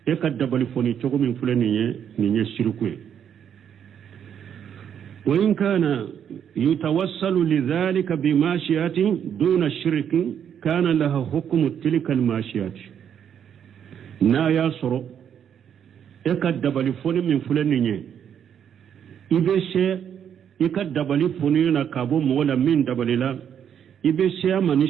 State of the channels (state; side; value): quieter; left; 8.6 dB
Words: eka dabali foni chogo min fulani nye shirku wa in kana yutawassalu lidhalika bimashiyati duna shirki kana laha hukmu tilka almashiyati na ya soro eka dabali foni min fulani nye ibeshe eka dabali foni na kabo mola min dabalila ibeshe